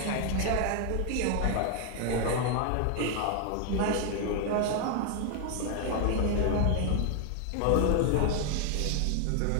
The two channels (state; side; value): different; both; correlation 0.00